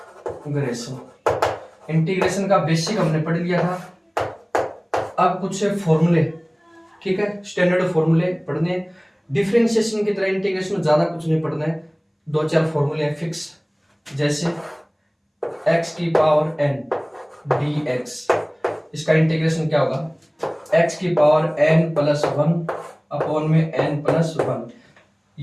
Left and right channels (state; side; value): identical; both; correlation 1.00